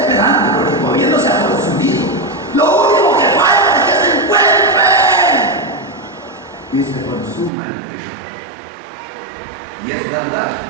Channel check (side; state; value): left; drops out; at 7.5 s